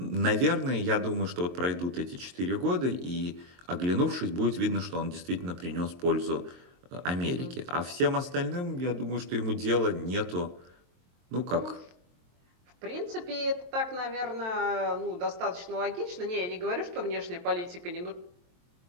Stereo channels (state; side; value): late; left; 23 ms